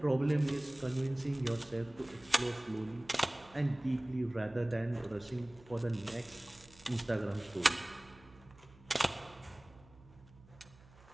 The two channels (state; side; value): noise; right; hum, 24 dB below the sound